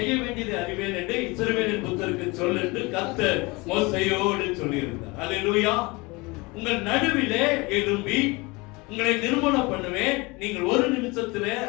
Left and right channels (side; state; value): right; quieter; 25.1 dB